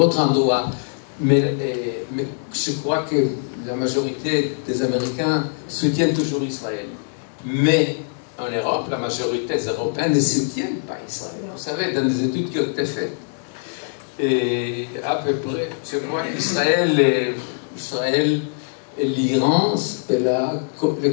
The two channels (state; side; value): silent; right; digital silence